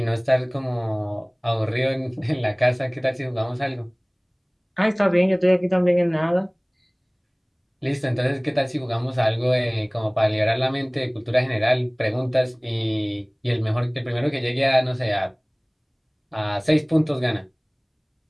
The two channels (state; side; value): identical; both; correlation 1.00